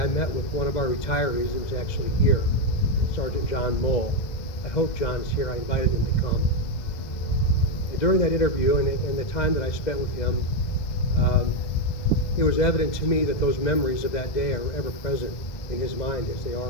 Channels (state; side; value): late; right; 2.0 ms